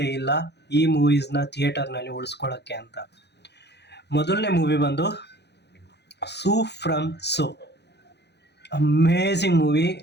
ಇಲ್ಲ ಈ ಮೂವೀಸ್ನ ಥಿಯೇಟರ್ನಲ್ಲಿ ಉಳಿಸ್ಕೊಳ್ಳೋಕ್ಕೆ ಅಂತ. ಮೊದಲನೇ ಮೂವಿ ಬಂದು ಸೂ ಫ್ರಮ್ ಸೋ. Amazing movie.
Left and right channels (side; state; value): right; late; 0.49 ms